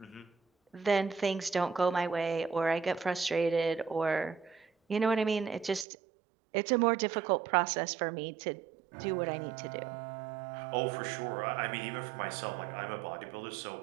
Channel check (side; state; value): left; drops out; at 5.9 s